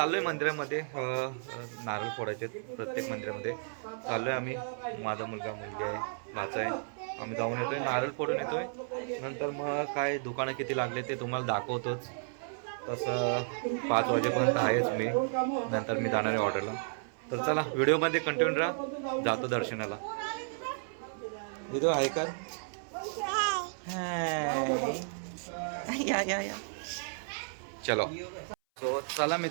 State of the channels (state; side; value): silent; left; 56 dB below the other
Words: मंदिरामध्ये नारळ फोडायचे प्रत्येक मंदिरामध्ये चाललोय आम्ही. माझा मुलगा मुलगी आहे, भाचा आहे. आम्ही जाऊन येतोय, नारळ फोडून येतोय. नंतर मग काय दुकानं किती लागले ते तुम्हाला दाखवतोच. तसं 5 वाजेपर्यंत आहेच मी. नंतर मी जाणार आहे ऑर्डरला. तर चला व्हिडिओमध्ये कंटिन्यू राहा. जातो दर्शनाला. इथं आहे का? या चलो. सो चला